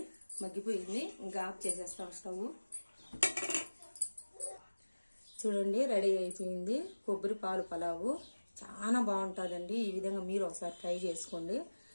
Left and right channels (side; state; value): both; inverted; correlation -1.00